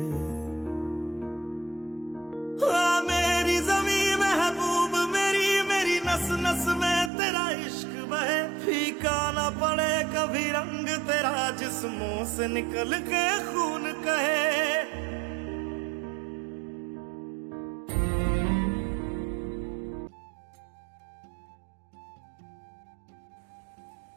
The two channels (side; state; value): left; drops out; at 7.1 s